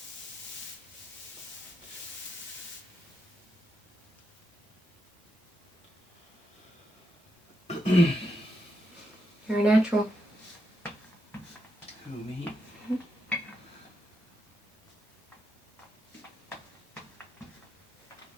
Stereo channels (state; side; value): normal; both; correlation 0.83